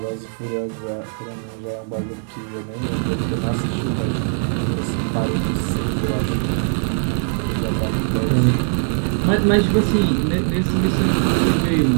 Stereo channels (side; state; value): left; silent; 60 dB below the other